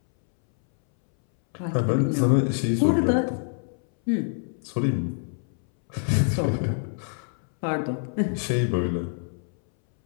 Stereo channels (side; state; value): right; silent; 61 dB below the other